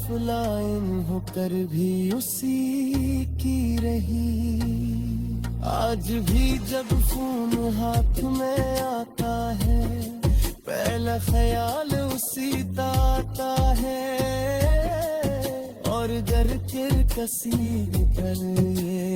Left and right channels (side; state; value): both; identical; correlation 1.00